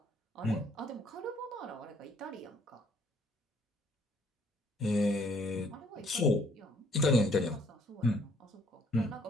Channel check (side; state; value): both; normal; correlation 0.63